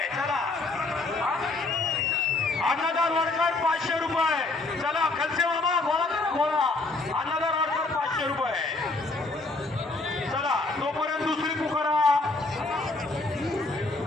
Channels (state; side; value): quieter; right; 3.3 dB